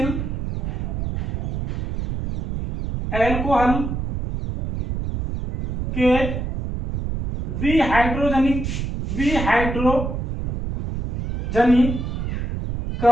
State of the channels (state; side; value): noise; right; rumble, 3 dB below the sound